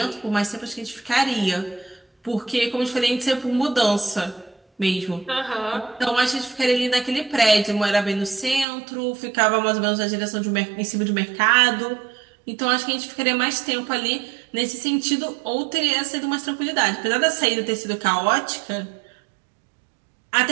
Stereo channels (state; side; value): drops out; left; at 8.7 s